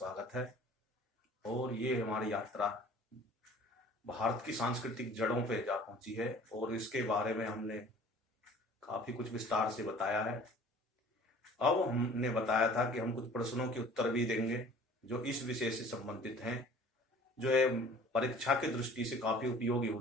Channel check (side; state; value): both; normal; correlation 0.48